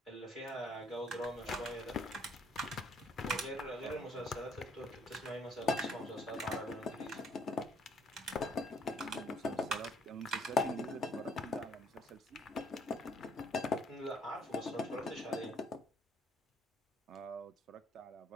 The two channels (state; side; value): normal; both; correlation 0.64